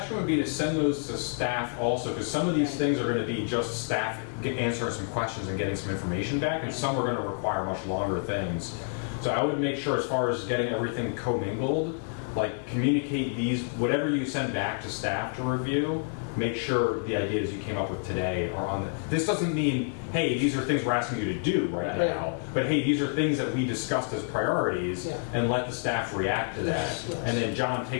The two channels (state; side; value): silent; right; 59 dB below the other